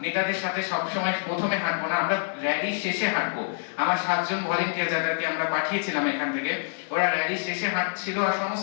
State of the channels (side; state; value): right; silent; digital silence